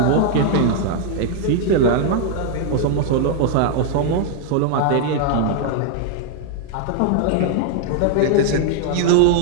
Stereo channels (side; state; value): both; different; correlation 0.00